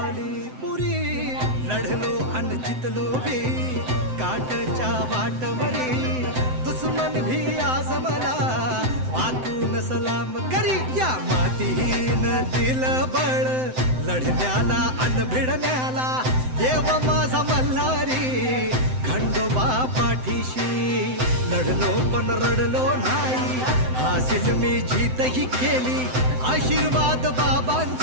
पुरी. लढलो अन जितलो भी काठच्या वाटवरी, दुश्मन भी आज मला वाकून सलाम करी. या मातीहीन दिल बळ लढण्याला अन भिडण्याला, देव माझा मल्हारी खंडोबा पाठीशी. लढलो पण रडलो नाही, हासिल मी जीतही केली, आशीर्वाद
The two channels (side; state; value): left; late; 7.8 ms